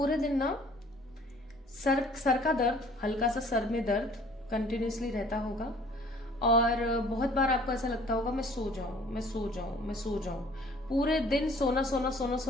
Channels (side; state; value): both; normal; correlation 0.54